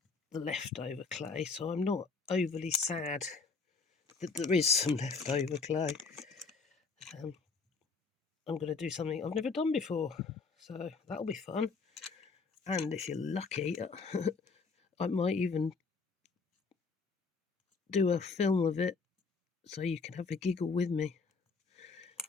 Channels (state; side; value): quieter; right; 4.5 dB